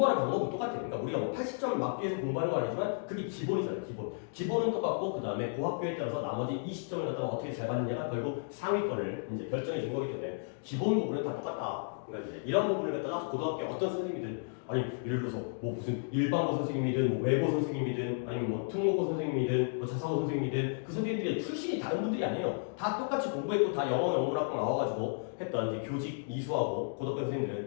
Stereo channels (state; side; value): silent; right; digital silence